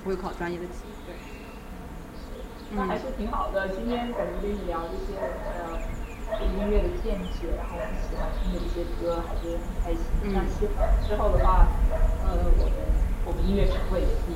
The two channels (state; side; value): identical; both; correlation 1.00